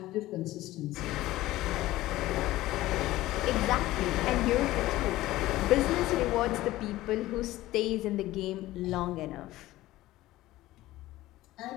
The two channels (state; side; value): quieter; right; 16.6 dB